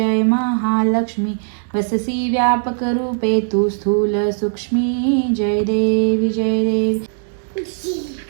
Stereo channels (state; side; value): silent; left; 67 dB below the other